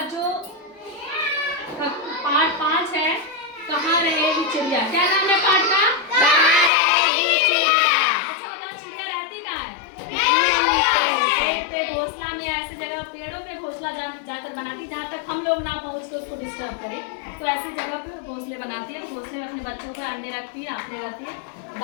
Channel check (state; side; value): drops out; right; at 6.7 s